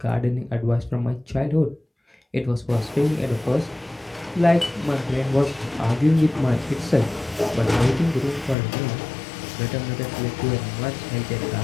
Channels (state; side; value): drops out; right; at 8.6 s